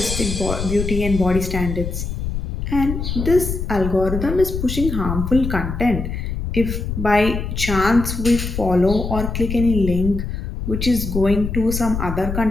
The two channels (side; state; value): left; noise; rumble, 4 dB below the sound